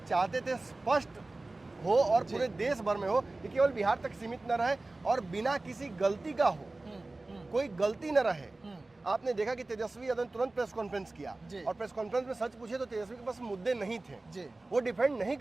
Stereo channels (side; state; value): left; quieter; 3.1 dB